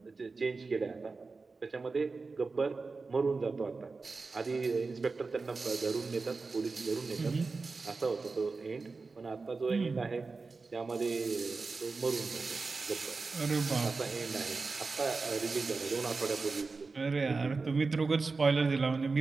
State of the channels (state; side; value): quieter; left; 4.1 dB